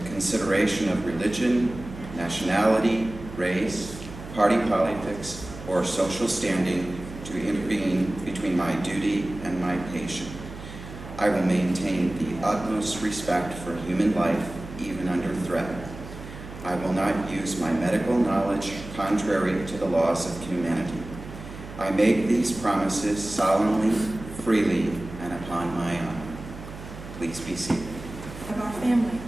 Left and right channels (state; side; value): noise; right; hum, 13 dB below the sound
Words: consideration of religion, nationality, race, party politics, or social standing to intervene between my duty and my patient. I will maintain the utmost respect for human life, even under threat. I will not use my medical knowledge contrary to the laws of humanity. I make these promises solemnly, freely, and upon my honor. Please be seated. Of our family